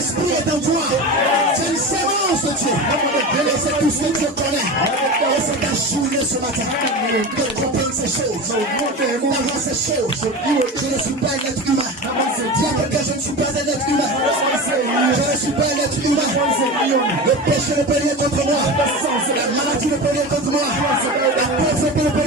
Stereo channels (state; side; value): normal; both; correlation 0.27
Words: est en toi. C'est une sémence de Dieu. Et c'est tout ce que Dieu connaît. Et c'est ta journée ce matin de comprendre ces choses. D'avoir ces choses. Je ne suis pas un être humain. Dis à quelqu'un, je ne suis pas un être humain. Je ne suis pas un être humain. Le péché ne peut rien contre moi. La maladie ne peut rien contre moi. La pauvreté ne peut